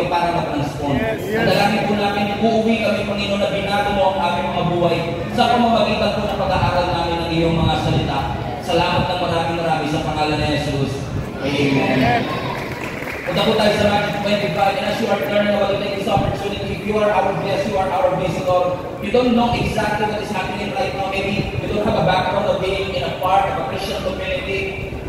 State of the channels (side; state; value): both; identical; correlation 1.00